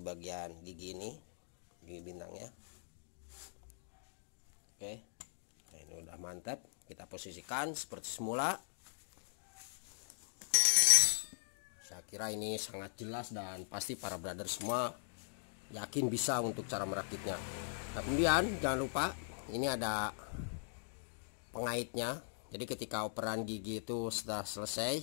bagian gigi ini, gigi bintangnya. Oke, nah ini udah mantap. Kita posisikan seperti semula. Saya kira ini sangat jelas dan pasti para brother semua yakin bisa untuk cara merakitnya. Nah, kemudian jangan lupa ini ada pengaitnya. Jadi ketika operan gigi itu sudah selesai,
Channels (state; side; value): silent; right; digital silence